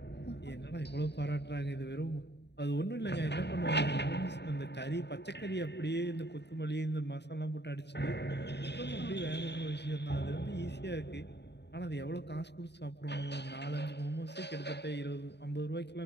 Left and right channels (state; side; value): late; right; 0.50 ms